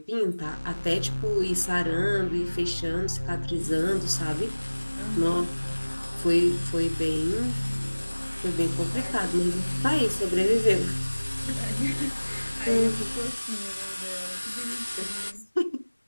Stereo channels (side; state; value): both; inverted; correlation -1.00